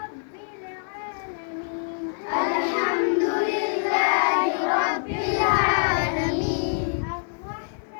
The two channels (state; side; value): silent; right; 62 dB below the other